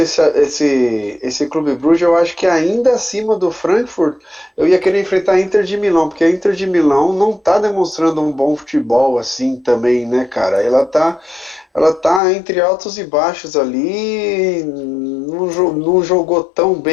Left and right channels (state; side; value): drops out; right; at 12.2 s